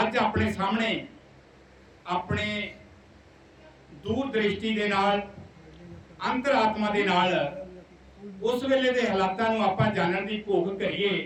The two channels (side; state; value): both; identical; correlation 1.00